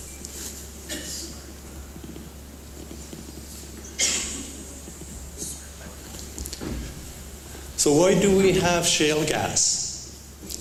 So why do we have shale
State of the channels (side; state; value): both; identical; correlation 1.00